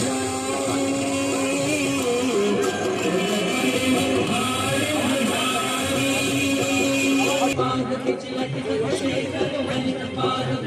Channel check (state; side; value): identical; both; correlation 1.00